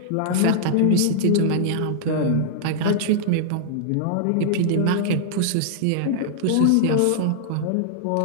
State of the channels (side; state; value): both; different; correlation -0.01